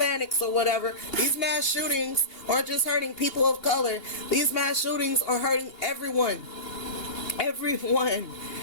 or whatever. These mass shootings aren't just hurting people of color. These mass shootings are hurting everyone. Everyone.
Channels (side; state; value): right; late; 2.8 ms